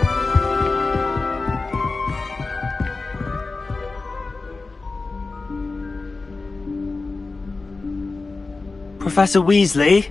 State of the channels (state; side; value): quieter; right; 3.7 dB